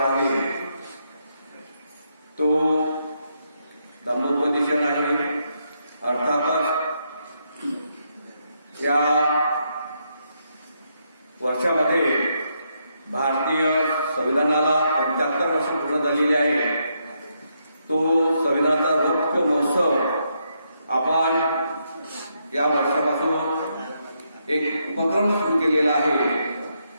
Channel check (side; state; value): both; inverted; correlation -0.78